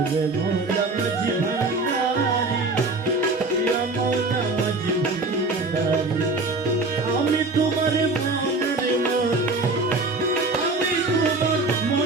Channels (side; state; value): left; quieter; 3.4 dB